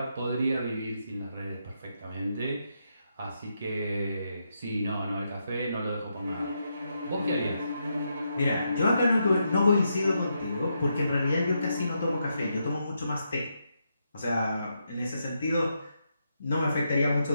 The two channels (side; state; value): both; inverted; correlation -0.82